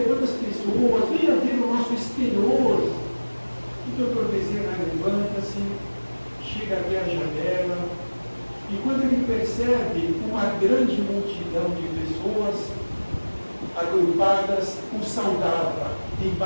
quantas pessoas, venha ver o nosso exterior. E o Dr. Bezerra levanta-se, chega até a janela, e quando ele percebe uma grande multidão de pessoas agrupadas, o saudava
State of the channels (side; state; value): both; inverted; correlation -1.00